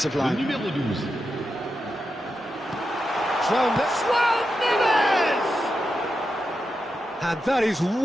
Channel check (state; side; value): normal; both; correlation 0.88